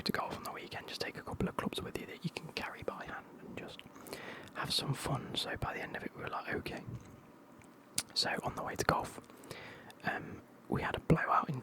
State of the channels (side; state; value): both; identical; correlation 1.00